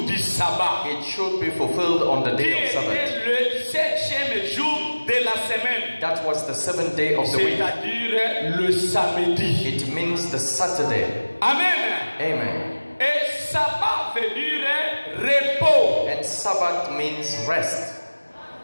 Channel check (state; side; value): inverted; both; correlation -1.00